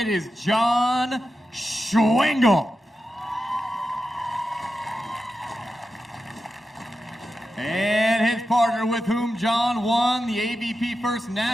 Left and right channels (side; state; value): both; normal; correlation 0.90